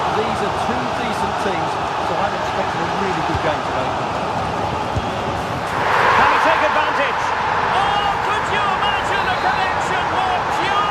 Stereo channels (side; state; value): both; identical; correlation 1.00